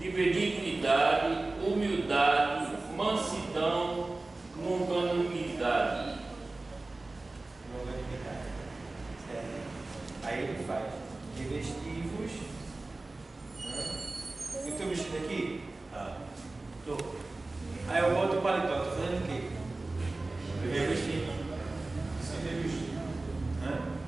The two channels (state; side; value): quieter; left; 3.1 dB